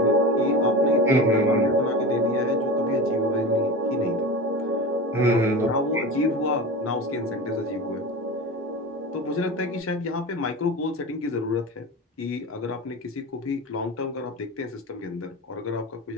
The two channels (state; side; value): normal; both; correlation 0.29